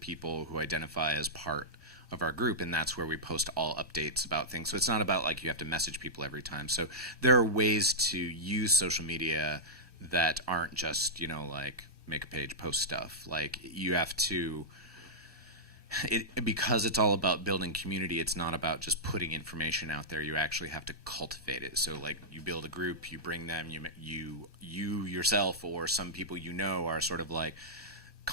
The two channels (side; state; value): both; normal; correlation -0.11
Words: who identify as part of our group, and that's where we post all updates about things. So it's not about like you have to message people every time. So there are ways to use social media that aren't just, like make a page, post stuff. Like you have to, because it's all about building community, it's not about just putting information out there. You actually have to cultivate it. So like you build a group, you bring them, you yourself or some people are sort of like